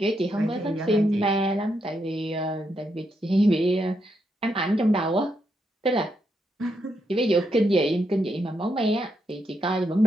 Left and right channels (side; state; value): both; normal; correlation 0.80